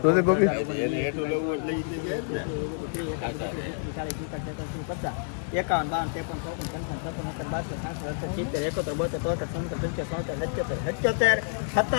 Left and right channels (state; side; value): silent; right; digital silence